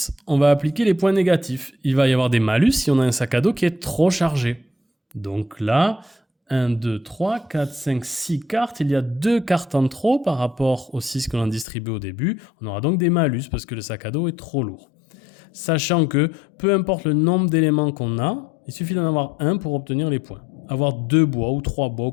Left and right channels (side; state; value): right; drops out; at 11.7 s